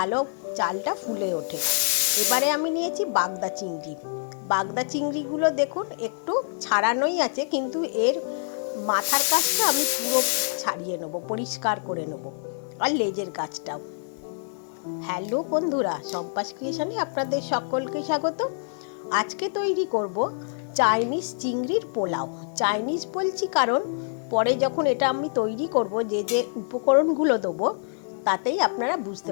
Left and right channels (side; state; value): right; silent; digital silence